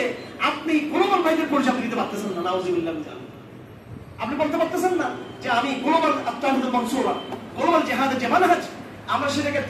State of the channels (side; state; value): both; identical; correlation 1.00